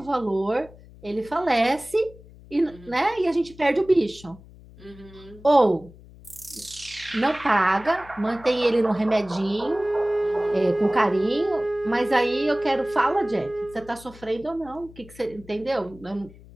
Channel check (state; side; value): noise; left; hum, 21 dB below the sound